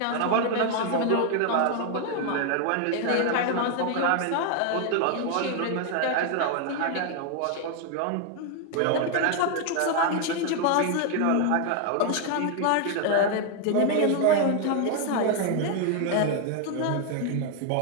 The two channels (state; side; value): different; both; correlation 0.00